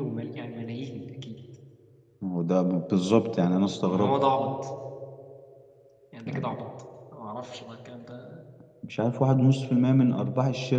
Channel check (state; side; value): identical; both; correlation 1.00